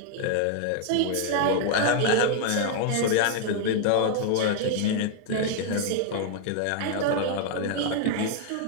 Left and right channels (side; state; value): both; different; correlation 0.00